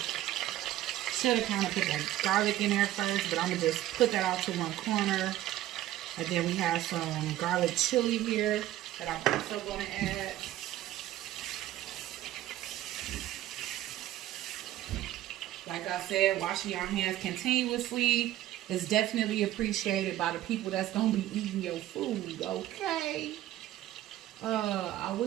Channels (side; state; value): left; quieter; 13.9 dB